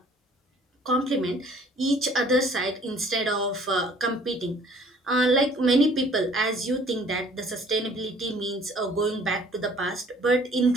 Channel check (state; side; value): normal; both; correlation 0.55